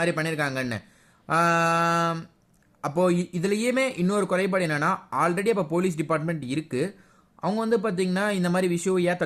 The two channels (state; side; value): identical; both; correlation 1.00